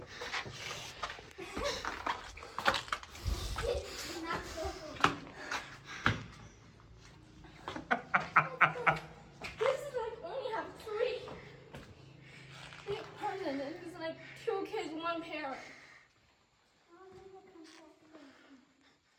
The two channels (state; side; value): identical; both; correlation 1.00